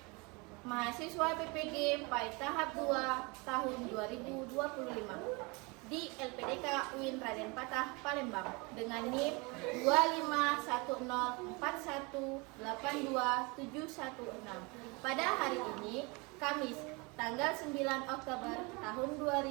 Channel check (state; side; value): quieter; left; 28.0 dB